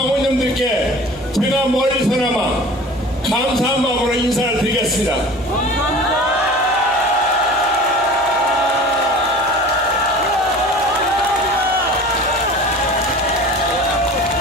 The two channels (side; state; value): both; normal; correlation 0.40